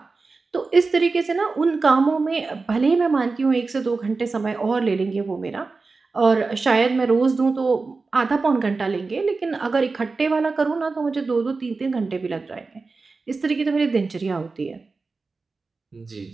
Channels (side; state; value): left; quieter; 4.0 dB